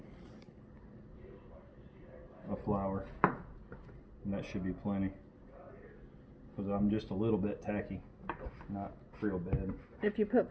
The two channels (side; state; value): both; identical; correlation 1.00